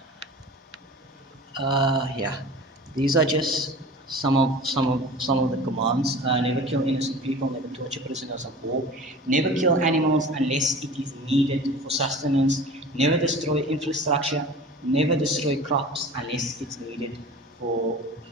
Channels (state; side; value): normal; both; correlation 0.39